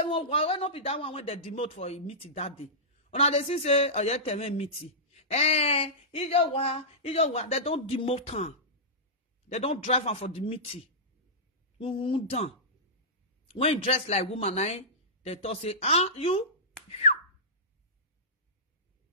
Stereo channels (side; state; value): both; normal; correlation -0.16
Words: why not be that one when they demote for a meeting that day? Una they say, oh, yeah, tell me meeting. They don't demote her. They don't drive her for the meeting. Done. When you dress like woman, they talk say, you?